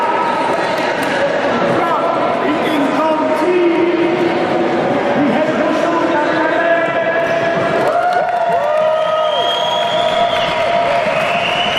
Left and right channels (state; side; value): identical; both; correlation 1.00